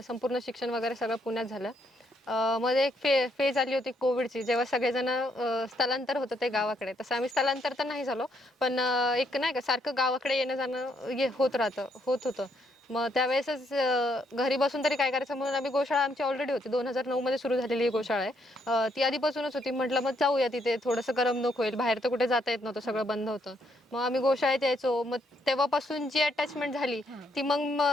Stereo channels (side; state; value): both; normal; correlation 0.73